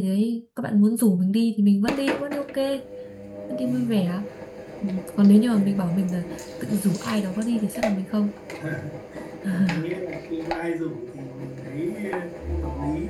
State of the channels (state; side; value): identical; both; correlation 1.00